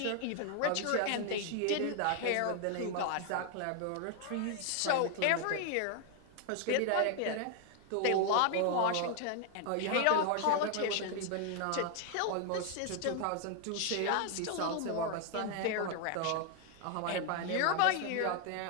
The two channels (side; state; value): both; different; correlation 0.00